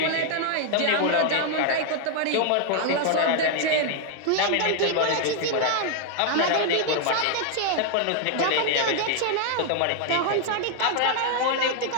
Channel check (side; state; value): both; different; correlation 0.00